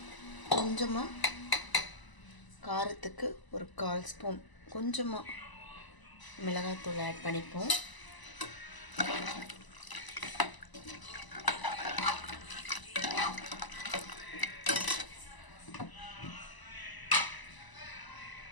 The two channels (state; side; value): late; right; 1.0 ms